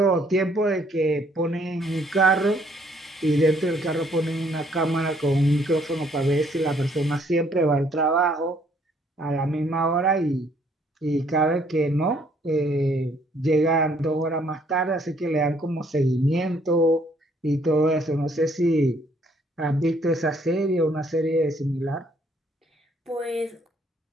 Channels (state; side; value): normal; both; correlation 0.65